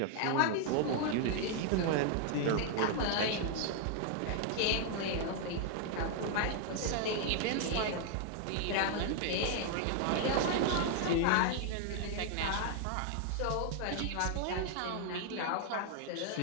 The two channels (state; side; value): different; both; correlation 0.00